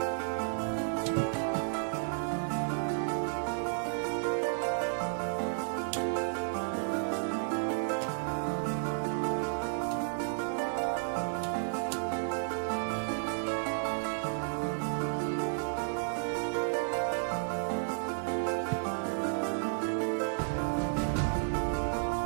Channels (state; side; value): silent; left; 56 dB below the other